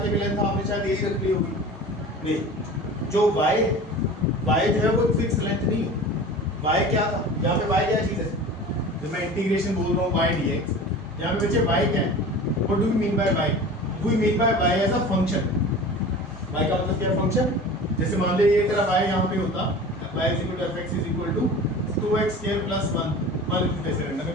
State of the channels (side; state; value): both; normal; correlation 0.37